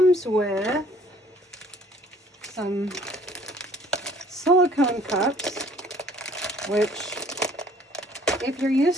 with some silicone cups, which, if you're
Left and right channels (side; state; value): both; normal; correlation 0.57